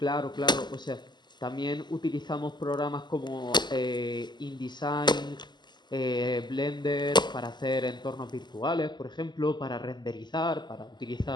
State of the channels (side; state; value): right; late; 0.21 ms